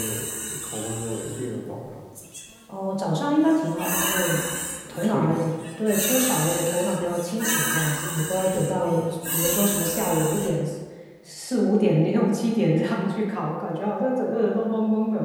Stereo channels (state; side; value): identical; both; correlation 1.00